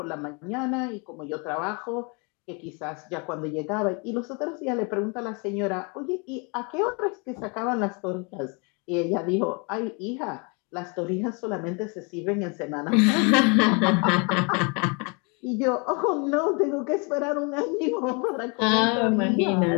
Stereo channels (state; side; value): quieter; right; 32.7 dB